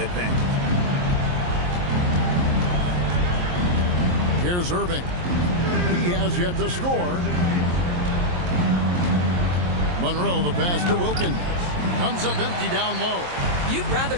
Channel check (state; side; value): late; left; 23 ms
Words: Here's Irving. He has yet to score. Monroe, the pass to Wilkins. Comes up empty down low. You'd rather